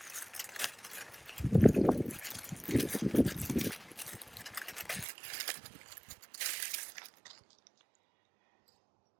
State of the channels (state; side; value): drops out; left; at 5.1 s